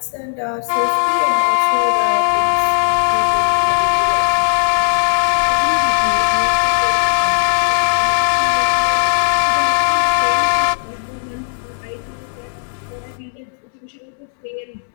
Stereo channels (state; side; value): silent; right; 68 dB below the other